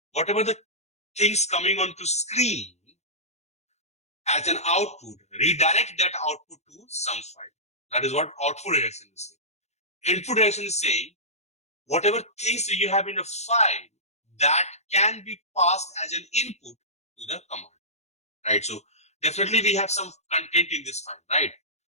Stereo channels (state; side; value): late; right; 0.32 ms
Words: whatever the things coming onto screen as an output, redirect that output to some file. That is what output redirection is saying. Input redirection is saying whatever things you have in a file that can be passed as an input to the command, right? So definitely we have some content in this file, right?